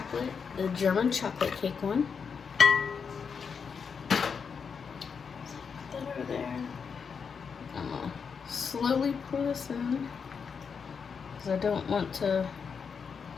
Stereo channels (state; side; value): quieter; right; 6.1 dB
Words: the German chocolate cake one. Put that over there. I'm gonna slowly pour this in because I don't want to